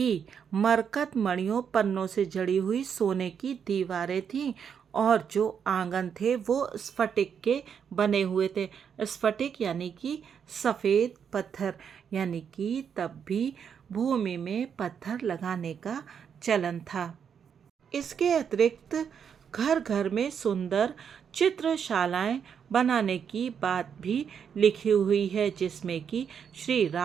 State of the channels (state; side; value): quieter; left; 7.4 dB